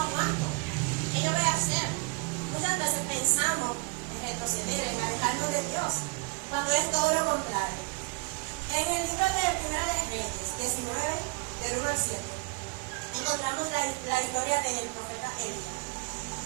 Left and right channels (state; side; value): quieter; left; 29.4 dB